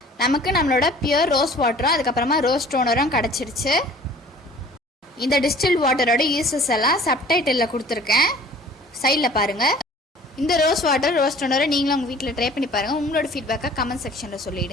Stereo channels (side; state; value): both; normal; correlation 0.49